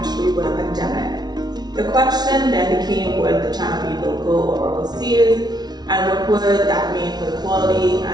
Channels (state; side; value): late; left; 0.19 ms